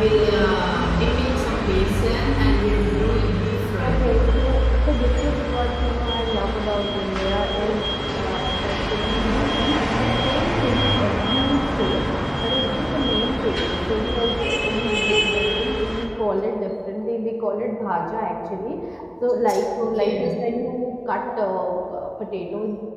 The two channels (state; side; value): identical; both; correlation 1.00